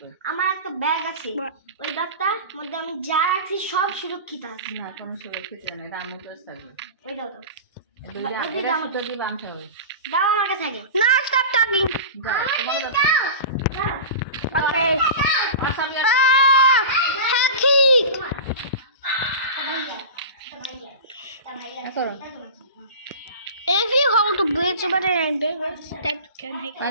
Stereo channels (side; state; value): both; inverted; correlation -0.31